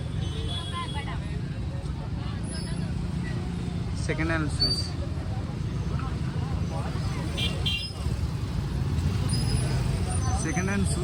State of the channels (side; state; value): both; identical; correlation 1.00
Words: Second hand shoes. Second hand